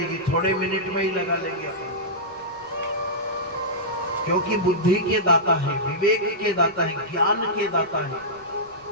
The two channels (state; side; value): noise; left; rumble, 30 dB below the sound